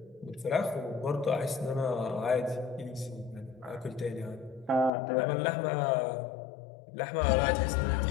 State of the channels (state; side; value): drops out; right; at 4.9 s